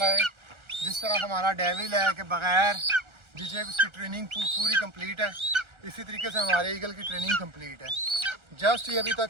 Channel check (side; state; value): left; late; 1.4 ms